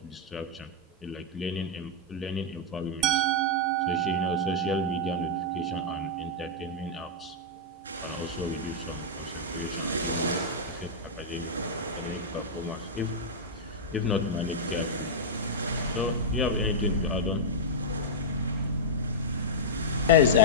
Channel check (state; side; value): normal; both; correlation -0.07